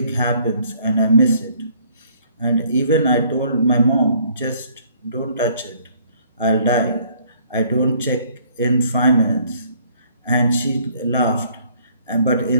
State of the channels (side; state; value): both; inverted; correlation -0.61